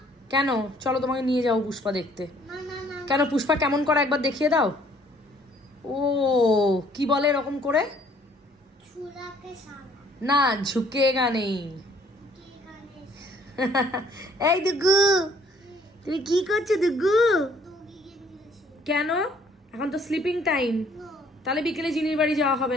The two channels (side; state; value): both; normal; correlation 0.61